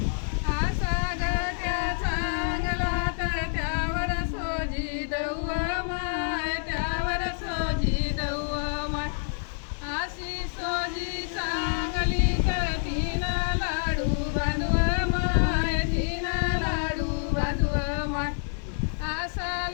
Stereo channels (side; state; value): right; silent; 58 dB below the other